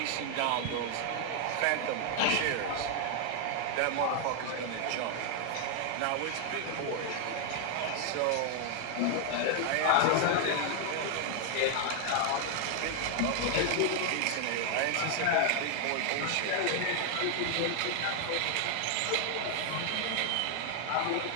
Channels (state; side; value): different; both; correlation 0.00